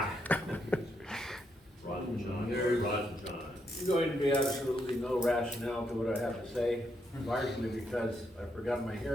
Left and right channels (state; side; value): normal; both; correlation 0.78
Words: There's going to be absolutely no rationale to what I have to say, largely because I forgot my